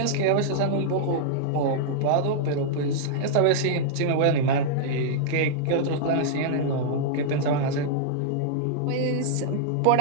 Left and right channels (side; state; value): both; different; correlation -0.02